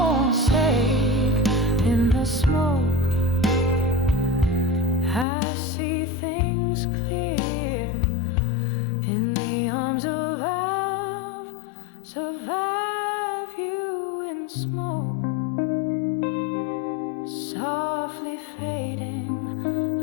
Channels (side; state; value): right; drops out; at 5.2 s